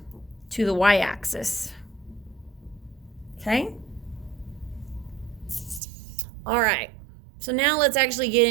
to the y-axis. Okay? All right. So now let's actually get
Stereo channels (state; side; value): drops out; left; at 5.8 s